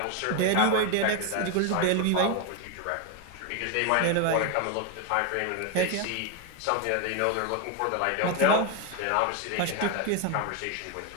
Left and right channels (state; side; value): different; both; correlation 0.02